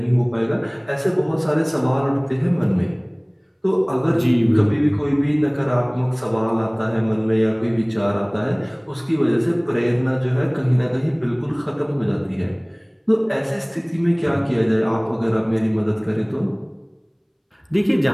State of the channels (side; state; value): both; identical; correlation 1.00